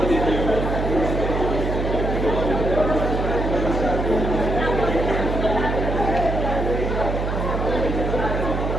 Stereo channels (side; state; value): right; noise; hum, 2 dB below the sound